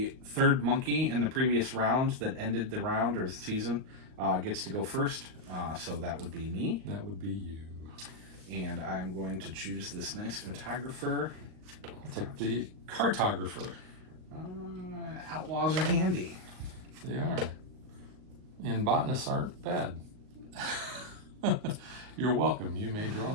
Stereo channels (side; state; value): left; late; 38 ms